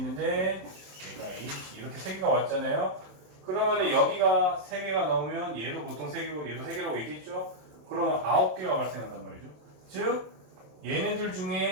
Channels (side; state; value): left; late; 27 ms